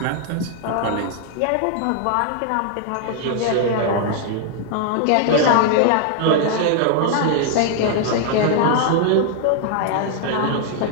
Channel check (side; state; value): both; different; correlation 0.00